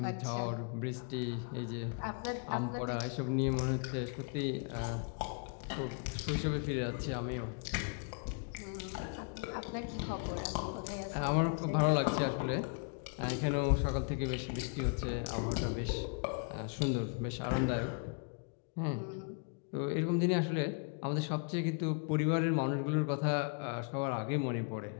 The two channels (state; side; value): quieter; right; 39.4 dB